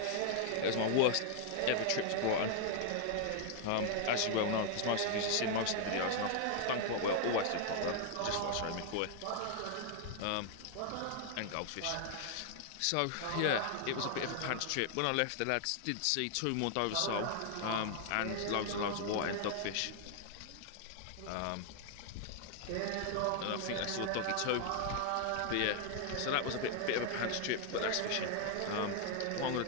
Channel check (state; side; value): different; both; correlation 0.00